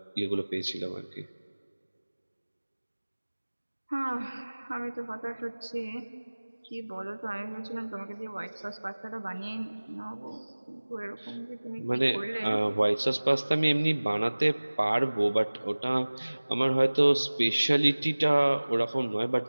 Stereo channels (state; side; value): inverted; both; correlation -1.00